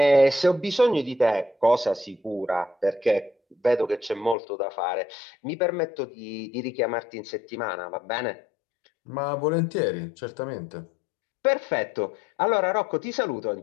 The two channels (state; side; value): drops out; right; at 4.4 s